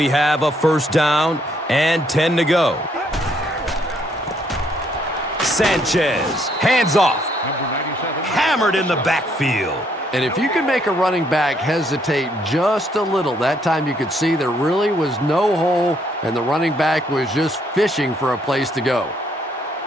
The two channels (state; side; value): normal; both; correlation 0.70